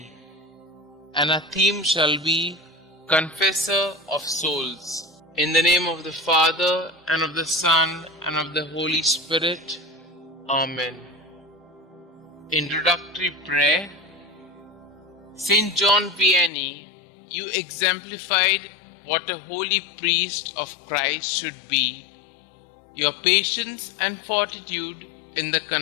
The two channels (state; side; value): drops out; right; at 16.5 s